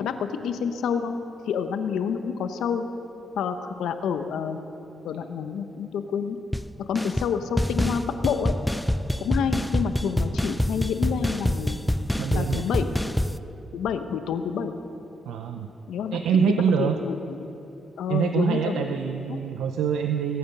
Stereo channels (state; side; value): normal; both; correlation 0.72